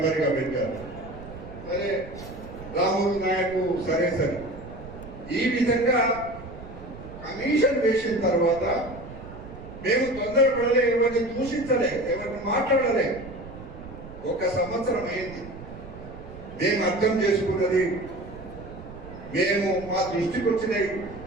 గా పెట్టారు. సరే, రాములు నాయకు సరే. ఈ విధంగా కమిషన్ వేసిన తర్వాత మేము తొందరపడలే, ఎవరిని దూషించలే, ఎవరిని మాట్లాడలే. 1 సంవత్సరం అయింది. మేము అర్థం చేసుకున్నది, మేము మా దృష్టికి వచ్చినాయి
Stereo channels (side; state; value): right; noise; rumble, 14 dB below the sound